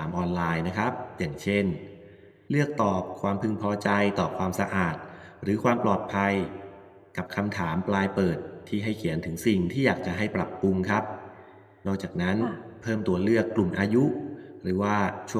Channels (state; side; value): identical; both; correlation 1.00